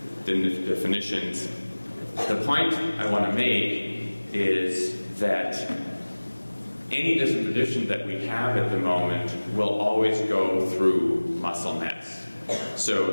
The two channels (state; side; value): inverted; both; correlation -1.00